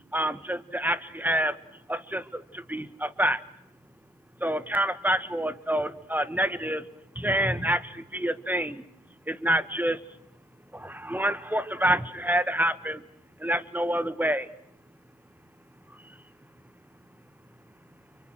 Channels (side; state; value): both; normal; correlation 0.70